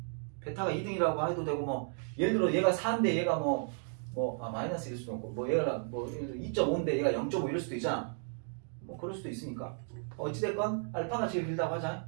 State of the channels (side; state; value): left; silent; 55 dB below the other